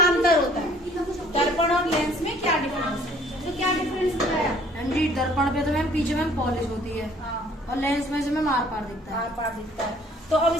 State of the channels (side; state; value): both; normal; correlation 0.57